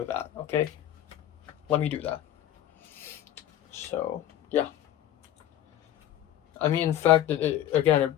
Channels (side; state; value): right; quieter; 11.9 dB